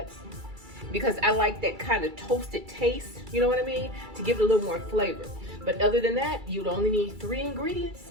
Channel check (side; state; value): left; late; 2.3 ms